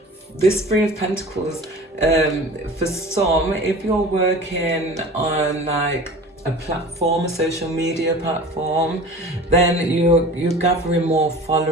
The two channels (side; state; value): both; normal; correlation 0.39